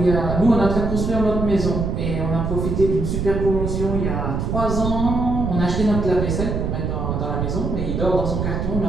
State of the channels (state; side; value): noise; right; rumble, 1 dB below the sound